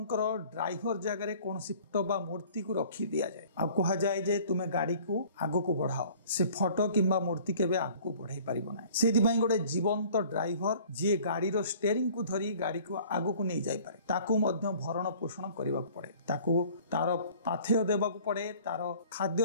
ड्राइवर जगह रे कोनसी फोटो बा मूर्ति को रखी दिया जाए, आ कहा जाए जे तुमे गाड़ी को आगो को बढ़ाओ, से फोटो किंबा मूर्ति केबे आगो को बढ़ाई परिबो ना। सेति पई गोटे जीवंत ड्राइवर जे गाड़ी रो स्टीयरिंग को धरी गाड़ी को आगो को नहीं जाई पारे, ताकू मध्य भरण पोषण करबा पड़े, ताकू तार पाथेय देबा को पड़े, तार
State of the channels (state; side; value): inverted; both; correlation -0.50